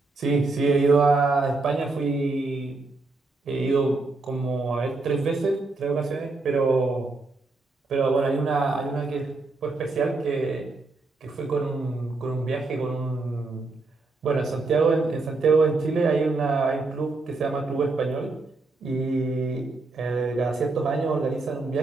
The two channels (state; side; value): quieter; left; 3.5 dB